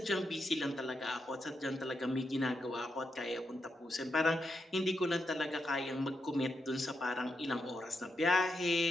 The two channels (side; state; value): both; normal; correlation 0.84